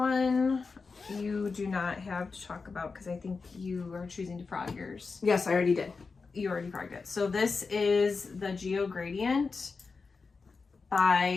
you do not have to talk about because I think you are choosing to frog yours. Yes, I already did. You already frogged it. So this is the Geo Gradient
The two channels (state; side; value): quieter; right; 4.6 dB